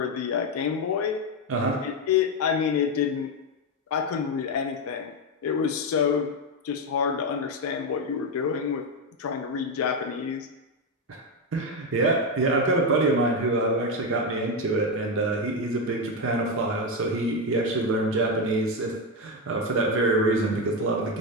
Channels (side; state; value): both; normal; correlation 0.08